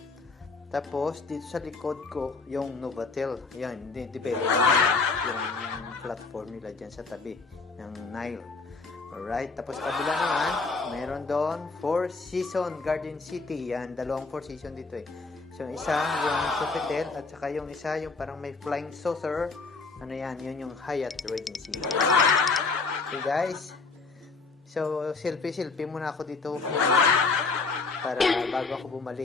Tapos, dito sa likod ko, yung Novotel. Yan, develop nila yung platform nila dyan sa tabi ng Nile. Alright, tapos kabila naman, meron doon Four Seasons Garden City. Yan, dalawang Four Seasons dito So, yung isa, yung Sofitel, at saka yung isa, yung parang may flying saucer. Ano yan, yun yung Hyatt Regency. Okay guys, so selfie muna ako dito para bago ako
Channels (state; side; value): quieter; right; 4.2 dB